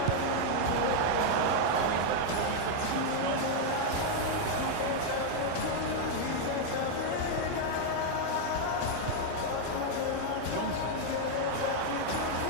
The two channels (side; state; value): both; different; correlation 0.00